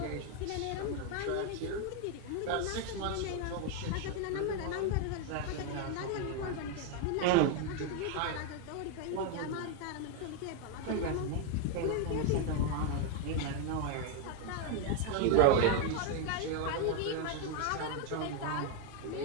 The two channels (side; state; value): both; different; correlation 0.01